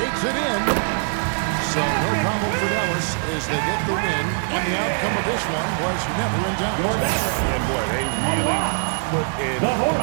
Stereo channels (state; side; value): silent; left; digital silence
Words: it in. So no problem for Dallas as they get the win. And the outcome of this one was never in doubt. And boy, they really put in